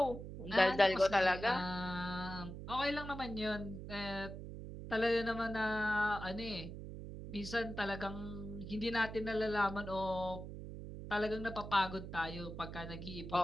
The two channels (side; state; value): right; noise; hum, 9 dB below the sound